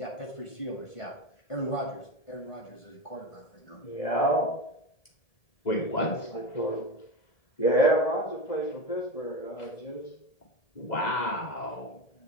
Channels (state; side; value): late; right; 1.8 ms